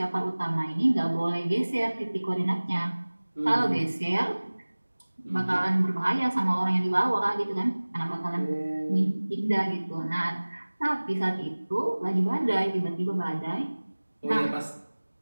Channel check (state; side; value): inverted; both; correlation -1.00